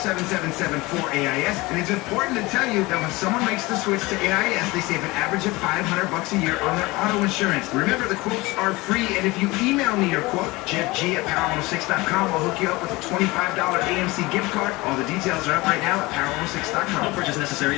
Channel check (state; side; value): quieter; right; 22.1 dB